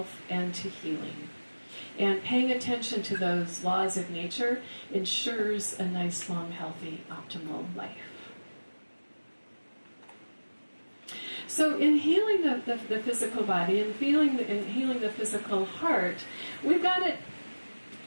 and to healing. And paying attention to those laws of nature ensures a nice, long, healthy, optimal life. So in healing the physical body and healing the physical heart, we've got to,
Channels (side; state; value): both; inverted; correlation -1.00